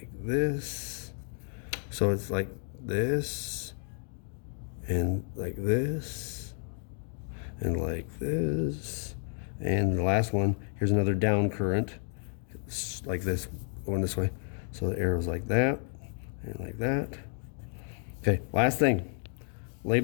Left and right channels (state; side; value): silent; right; 57 dB below the other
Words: this. So it's like this, and like this, and like this. And the last one, here's another down current. It's like this, going this way. So the arrow's like that, and like that. Okay, last thing.